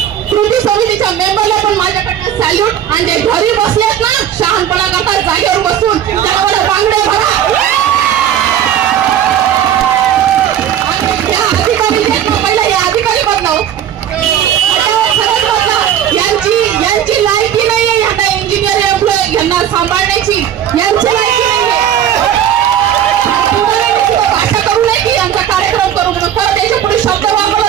कृती समितीच्या मेंबरला पण माझ्याकडनं सॅल्यूट। आणि जे घरी बसलेत ना शहाणपणा करतात जागेवर बसून, त्याला बांगडे भरा। पहिला हे अधिकारी बदलाव, यांची लायकी नाहीये यांना इंजिनियर एम्प्लॉय यांना सांभाळण्याची, यांची लायकी भाषा करू नये की यांचा कार्यक्रम करू म्हणून। परत त्याच्या पुढे शब्द वापरला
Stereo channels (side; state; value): left; quieter; 10.1 dB